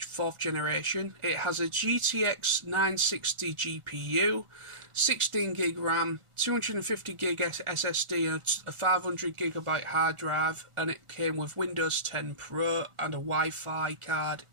generation. It has a GTX 960 GPU, 16 gig RAM, 250 gig SSD, and a 500 gigabyte hard drive, and it came with Windows 10 Pro and a Wi-Fi card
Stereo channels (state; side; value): late; left; 1.4 ms